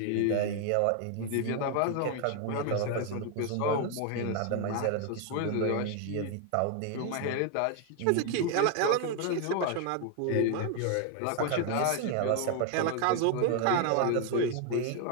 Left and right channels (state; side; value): different; both; correlation 0.01